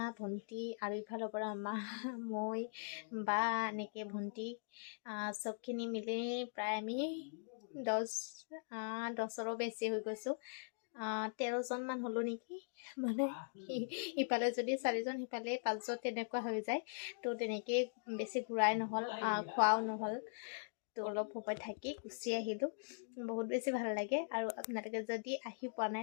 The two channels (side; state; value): right; silent; digital silence